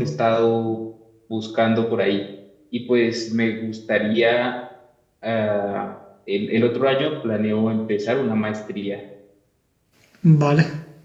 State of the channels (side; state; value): both; identical; correlation 1.00